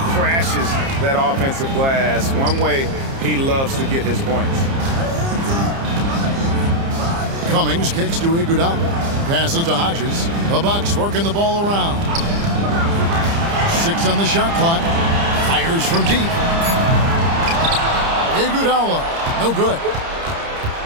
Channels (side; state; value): left; late; 30 ms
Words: that offensive glass. One way he loves to get his points. Cummings kicks to Iguodala. Passes to Hodges. The Bucks working the ball around. 6 on the shot clock. Fires from deep. Iguodala. No good.